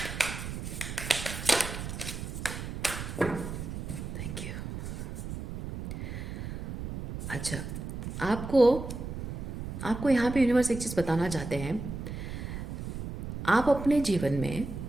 Thank you. अच्छा, आपको आपको यहाँ पे यूनिवर्स एक चीज़ बताना चाहते हैं। आप अपने जीवन में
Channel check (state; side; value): noise; right; rumble, 7 dB below the sound